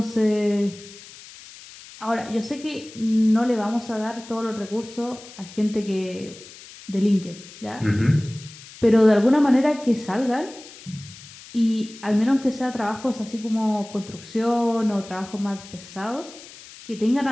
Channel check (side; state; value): left; noise; hiss, 18 dB below the sound